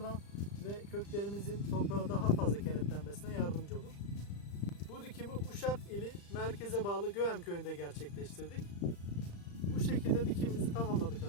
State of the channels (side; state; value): right; late; 35 ms